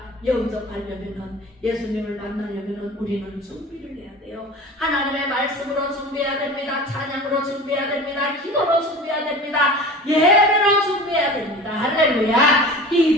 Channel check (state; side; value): normal; both; correlation 0.36